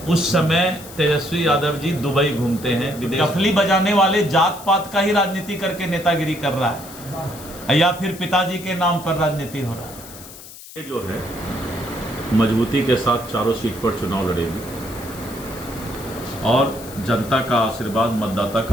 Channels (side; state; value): left; noise; hiss, 16 dB below the sound